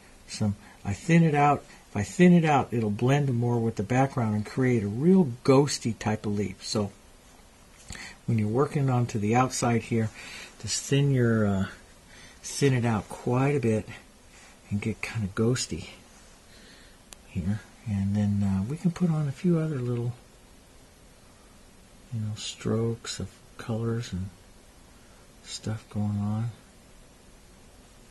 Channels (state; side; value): identical; both; correlation 1.00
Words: some. I thin it out. If I thin it out, it'll blend more with the background and create a real ghosty type of leaf. So when you're working onto the outside here, just thin it out quite a bit and get kind of ghosty here. And then we can put on a few other little strokes of colors and stuff going on